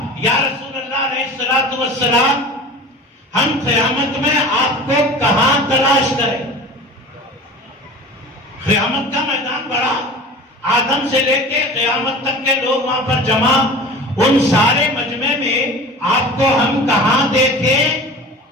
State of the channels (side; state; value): both; normal; correlation 0.38